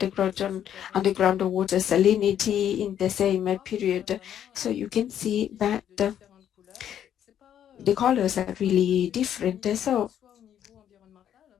water salinity in the same period. So you can see that the colors are really different. So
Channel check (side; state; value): right; quieter; 10.0 dB